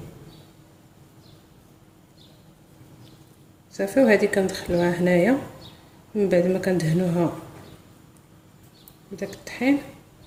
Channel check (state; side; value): identical; both; correlation 1.00